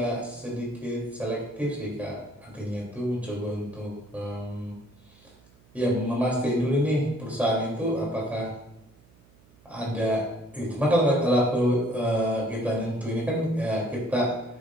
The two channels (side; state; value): right; noise; hum, 28 dB below the sound